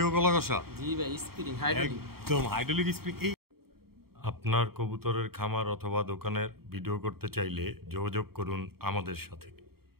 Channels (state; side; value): late; left; 0.95 ms